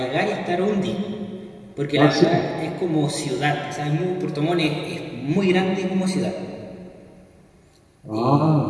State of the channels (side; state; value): both; identical; correlation 1.00